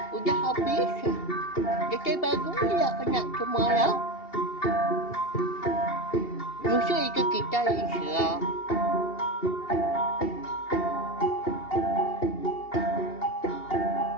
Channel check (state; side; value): late; right; 2.8 ms